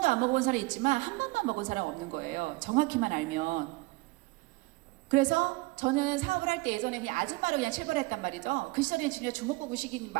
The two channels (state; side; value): quieter; left; 24.0 dB